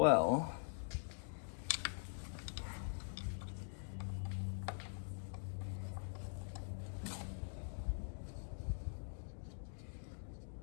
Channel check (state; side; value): silent; right; digital silence